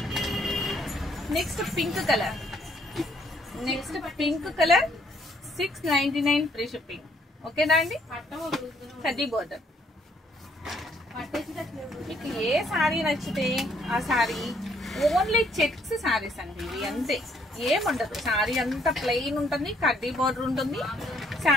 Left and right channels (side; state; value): both; normal; correlation 0.67